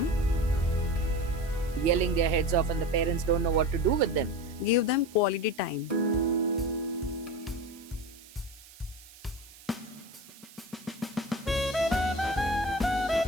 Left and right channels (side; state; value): right; noise; hiss, 21 dB below the sound